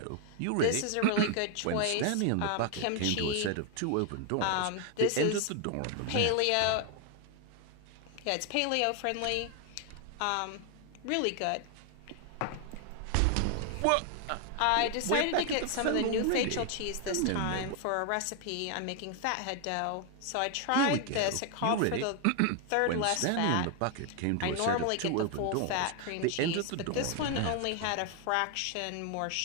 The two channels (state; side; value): different; both; correlation 0.00